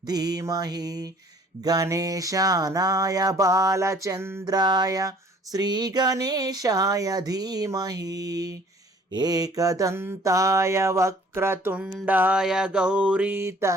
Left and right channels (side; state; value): both; normal; correlation 0.54